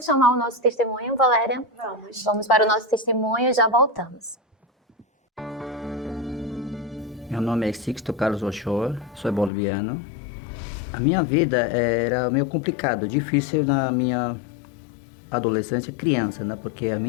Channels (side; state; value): right; drops out; at 9.5 s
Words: chamar o nosso testemunho, Valéria? Vamos para o nosso testemunho e já voltamos. Meu nome é Sixto Carlos Ochoa, sou boliviano. A minha vida era meio complicado, difícil na minha adolescência, criança, né? Porque a